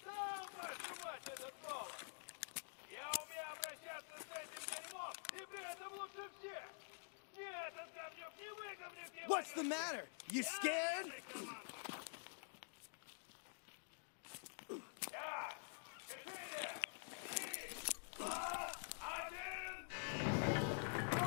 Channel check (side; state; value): right; silent; digital silence